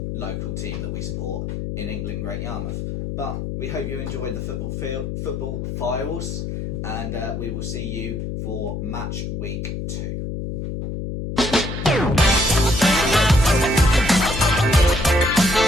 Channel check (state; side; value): noise; left; hum, 5 dB below the sound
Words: local team that we support in England, Great Yarmouth. But we hope you enjoyed the football files, and we will see you for match week 2.